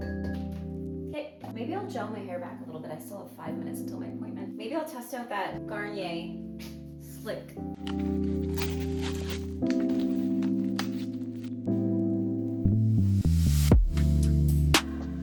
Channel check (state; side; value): identical; both; correlation 1.00